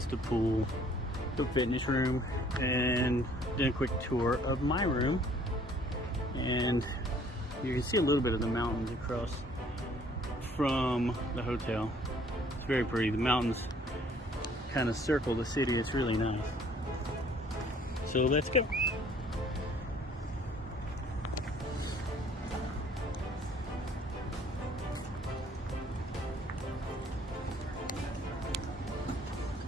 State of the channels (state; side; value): normal; both; correlation 0.58